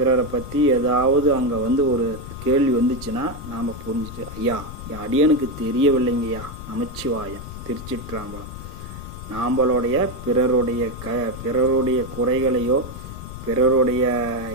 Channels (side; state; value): left; noise; rumble, 11 dB below the sound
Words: பற்றி ஏதாவது அங்கே ஒரு கேள்வி வந்துச்சுன்னா நாம் புரிஞ்சுட்டு, ஐயா என் அடியனுக்கு தெரியவில்லைங்கய்யா, நமச்சிவாயம், திருச்சிற்றம்பலம். நாம்பளுடைய பிறருடைய குறைகளையோ பிறருடைய